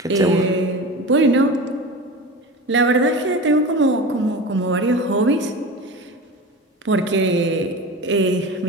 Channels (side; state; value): both; normal; correlation 0.30